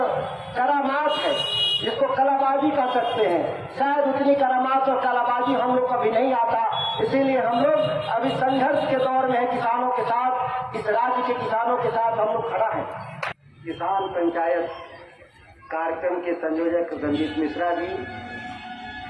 करामात है जिसको कलाबाजी कह सकते हैं। शायद उतनी करामात और कलाबाजी हम लोग को अभी नहीं आता, इसीलिए हम लोग अभी संघर्ष के दौर में है किसानों के साथ, इस राज्य के किसानों के साथ हम लोग खड़ा है। किसान पंचायत कार्यक्रम के संयोजक रंजीत मिश्रा जी,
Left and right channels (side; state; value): both; identical; correlation 1.00